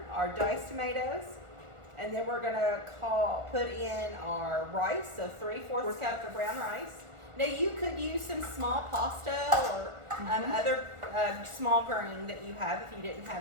our diced tomatoes, and then we're gonna put in our rice, so 3/4 cup of brown rice. Now you could use some small pasta or other small grain that you have if you didn't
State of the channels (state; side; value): late; left; 1.4 ms